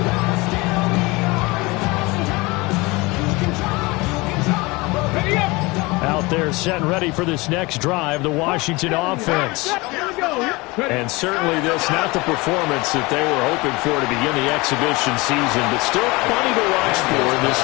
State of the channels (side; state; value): right; quieter; 23.8 dB